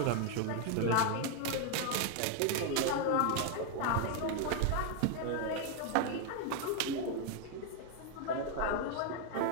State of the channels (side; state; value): both; different; correlation 0.00